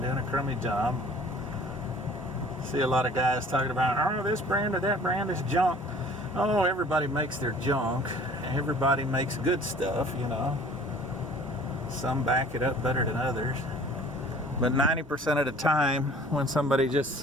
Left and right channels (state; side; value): normal; both; correlation 0.49